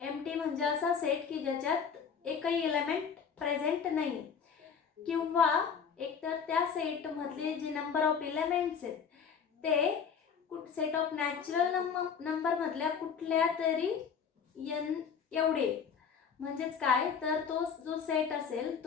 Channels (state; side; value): quieter; right; 6.6 dB